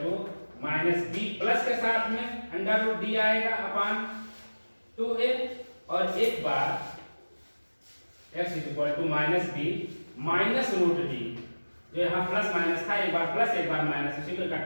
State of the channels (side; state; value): both; inverted; correlation -1.00